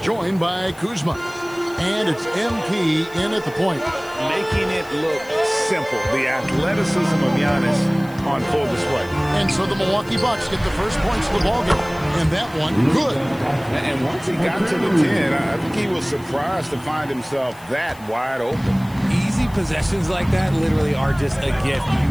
joined by Kuzma. And it's MP in at the point. Making it look simple. The athleticism of Giannis on full display. And so the Milwaukee Bucks get the first points of the ballgame. And that one, good. And once he got to the 10, I think he was surprised to find himself that wide open. Easy possessions like that literally are just a gift.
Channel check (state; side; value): noise; left; hiss, 23 dB below the sound